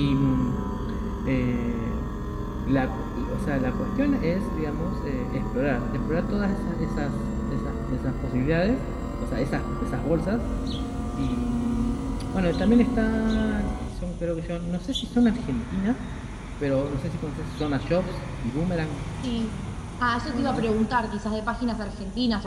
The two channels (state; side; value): identical; both; correlation 1.00